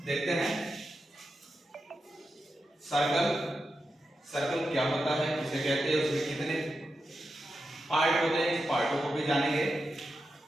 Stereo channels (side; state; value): both; normal; correlation 0.89